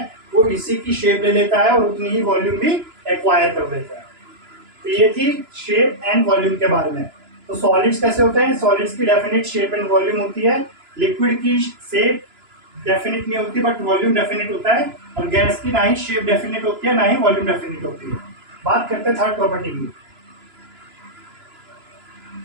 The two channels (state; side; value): late; left; 2.9 ms